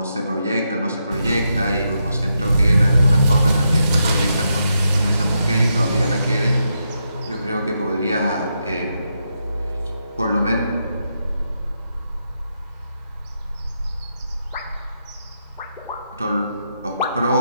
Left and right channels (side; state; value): both; inverted; correlation -0.83